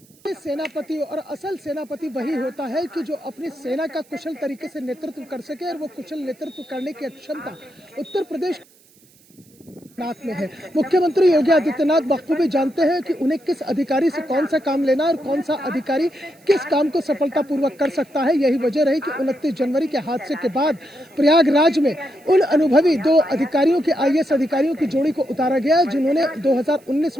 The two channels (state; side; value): noise; right; hiss, 29 dB below the sound